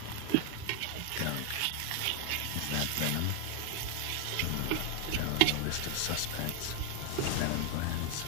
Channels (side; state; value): both; different; correlation 0.00